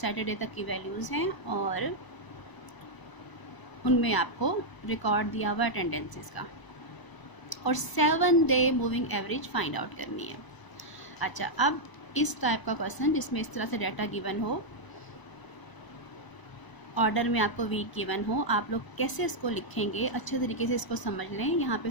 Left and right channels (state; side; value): late; right; 1.0 ms